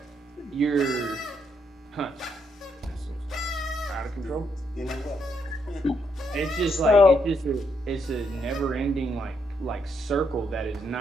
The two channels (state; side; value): normal; both; correlation 0.76